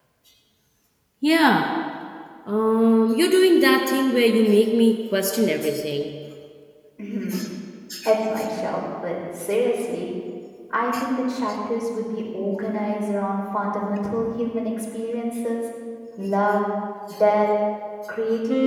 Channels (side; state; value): both; identical; correlation 1.00